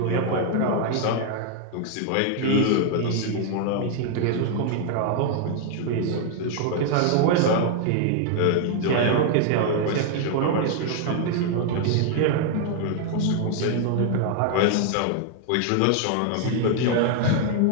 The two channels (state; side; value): different; both; correlation 0.00